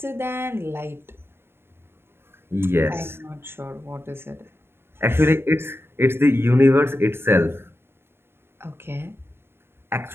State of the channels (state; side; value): late; left; 0.11 ms